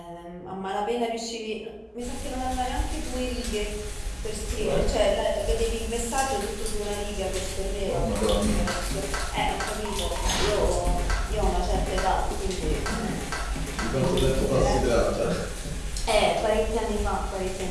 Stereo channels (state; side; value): identical; both; correlation 1.00